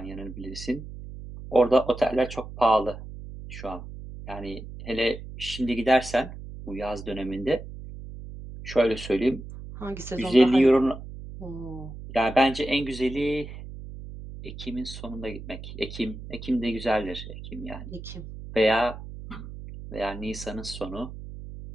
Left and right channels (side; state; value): right; noise; hum, 12 dB below the sound